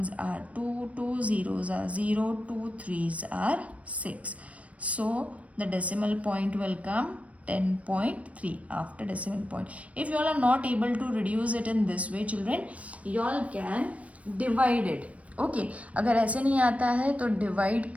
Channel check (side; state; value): left; late; 0.065 ms